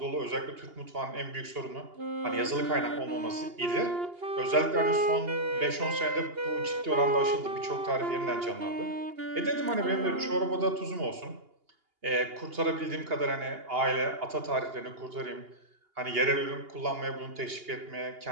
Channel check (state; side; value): late; left; 2.8 ms